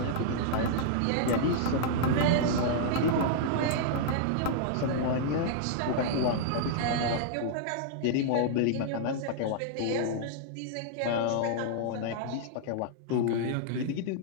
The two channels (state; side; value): different; both; correlation -0.01